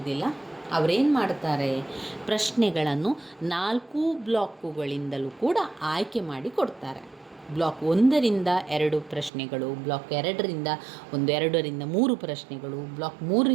ಅವರೇನು ಮಾಡ್ತಾರೆ, ಪ್ರಶ್ನೆಗಳನ್ನು 4 ಬ್ಲಾಕುಗಳಿಂದಲೂ ಕೂಡ ಆಯ್ಕೆ ಮಾಡಿ ಕೊಡ್ತಾರೆ. ಬ್ಲಾಕ್ 1ರಿಂದ 2 ಪ್ರಶ್ನೆಗಳು, ಬ್ಲಾಕ್ 2ರಿಂದ 2ರಿಂದ 3 ಪ್ರಶ್ನೆಗಳು, ಬ್ಲಾಕ್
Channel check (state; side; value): drops out; left; at 9.3 s